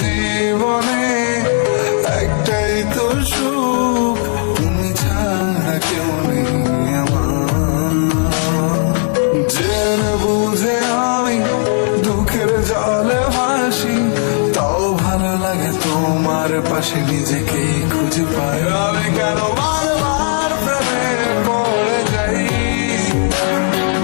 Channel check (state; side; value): silent; right; 60 dB below the other